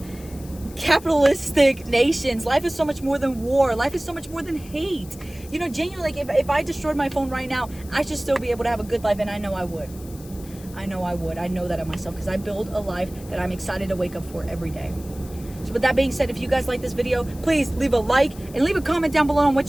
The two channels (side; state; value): left; noise; hiss, 20 dB below the sound